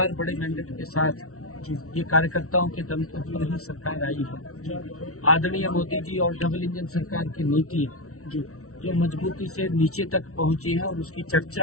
बड़े मैंडेट के साथ ये कार्यकर्ताओं के दम पर ही सरकार आई है। आदरणीय मोदी जी और डबल इंजन सरकार की नीति जो मजबूती से नीचे तक पहुंची है और उसकी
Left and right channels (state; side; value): late; right; 0.64 ms